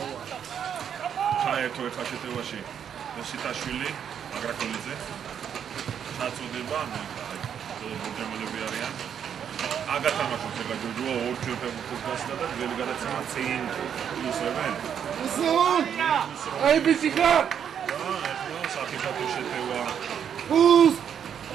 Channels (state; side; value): quieter; left; 8.4 dB